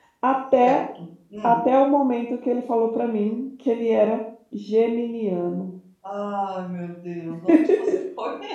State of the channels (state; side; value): identical; both; correlation 1.00